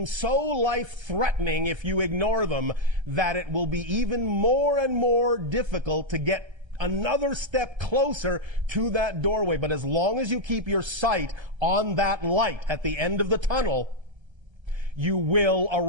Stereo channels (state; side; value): late; left; 1.3 ms